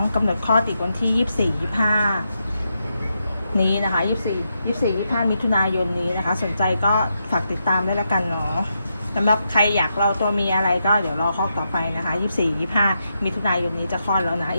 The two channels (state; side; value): inverted; both; correlation -0.84